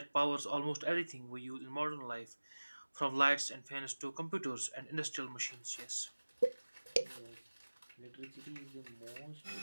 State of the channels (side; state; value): both; inverted; correlation -1.00